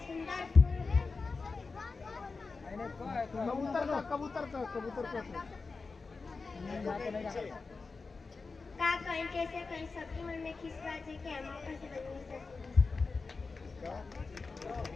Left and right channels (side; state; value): right; quieter; 4.2 dB